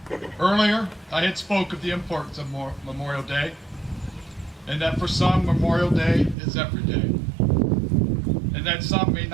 Earlier, I had spoke of the importance of Memorial Day, and that for some, Memorial Day is every day, and that some may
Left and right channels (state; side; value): drops out; left; at 6.4 s